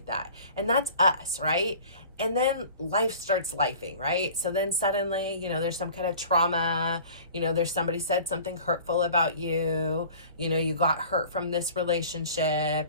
that. And that's us, right? And then life starts lifing, right? So then suddenly, there's some kind of trauma, there's somebody said something hurtful about you, you got hurt from this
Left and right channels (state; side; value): inverted; both; correlation -0.45